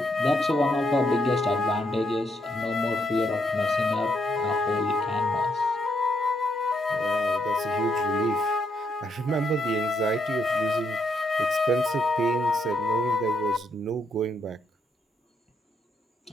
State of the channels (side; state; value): both; normal; correlation 0.77